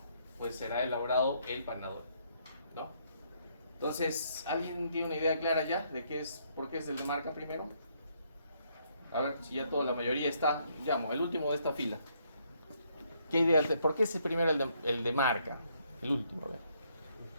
pues será elaborado el Panadol, ¿no? Entonces, ¿alguien tiene una idea clara ya de por qué es el de marca primero? A ver, si ya la mayoría está, llamo, el último de esta fila. ¿Qué idea? ¿Por qué es primero el de marca? El último, a ver.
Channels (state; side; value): inverted; both; correlation -0.71